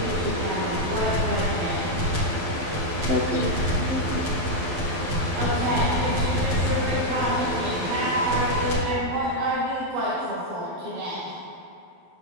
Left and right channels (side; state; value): left; late; 12 ms